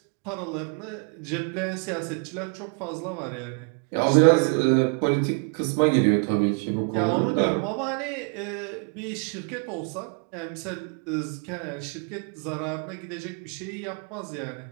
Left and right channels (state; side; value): quieter; left; 37.3 dB